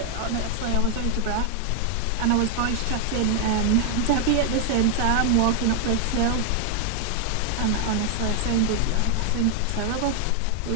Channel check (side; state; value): both; different; correlation 0.00